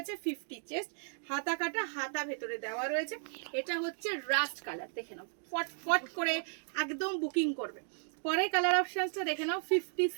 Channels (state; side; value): silent; left; 55 dB below the other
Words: 50 চেস্ট, হাতা কাটা, হাতা ভেতরে দেওয়া রয়েছে। এটা হচ্ছে রাস্ট কালার, দেখে নাও ফট করে একদম বুকিং করবে। পরে কালার অপশনসটা দেখে নাও,